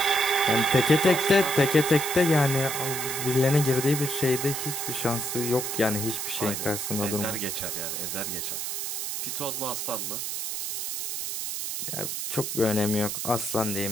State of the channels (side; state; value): right; noise; hiss, 3 dB below the sound